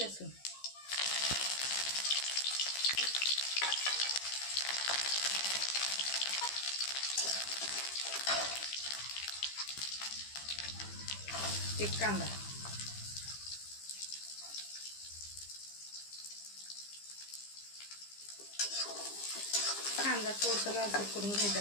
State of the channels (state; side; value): late; right; 15 ms